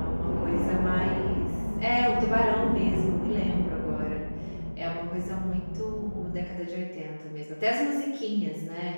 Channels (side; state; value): both; inverted; correlation -1.00